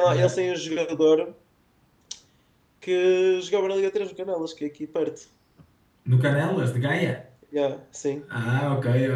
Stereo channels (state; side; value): identical; both; correlation 1.00